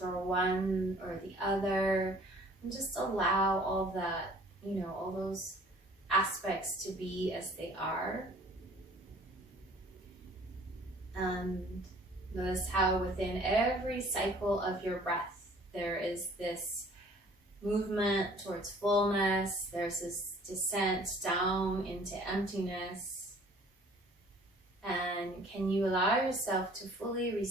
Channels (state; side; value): normal; both; correlation 0.53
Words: one or the other, and just allow all that, all those aspects to be as they are. And notice how within every cycle of your breath, there is this movement towards fullness, there's this descent down into emptiness. And can you allow yourself to fully